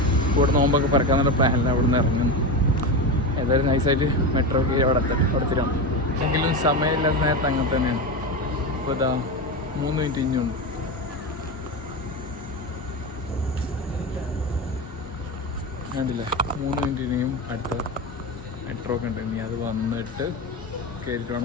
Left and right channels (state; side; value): normal; both; correlation 0.19